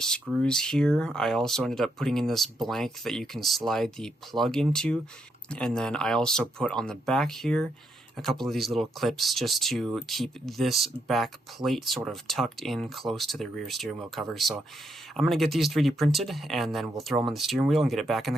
here. I also ended up putting in this blank that you can slide the plug into. And then I also put on the back here a couple of these little clips just to keep this back plate sort of tucked in close to the rear steering wheel cover. So I'm going to get these 3D printed, and then we'll throw them on the steering wheel and get it back in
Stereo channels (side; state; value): both; normal; correlation 0.78